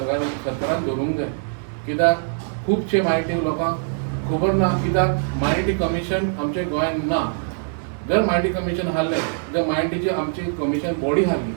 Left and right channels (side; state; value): left; silent; 64 dB below the other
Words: दवरूंक जाय. कित्याक खुबशे मायनॉरिटी लोकांक खबर ना, कित्याक मायनॉरिटी कमिशन आमच्या गोंयांत ना. जर मायनॉरिटी कमिशन आहलें जर मायनॉरिटीची आमची कमिशन बॉडी आहली